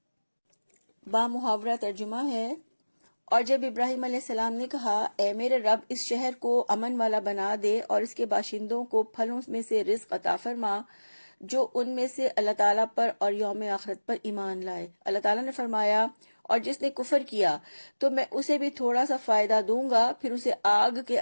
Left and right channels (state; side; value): inverted; both; correlation -1.00